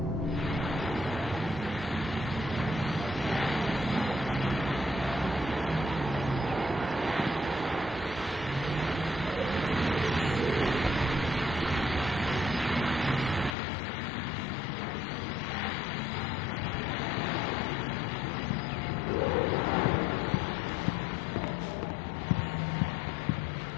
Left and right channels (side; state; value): right; drops out; at 13.6 s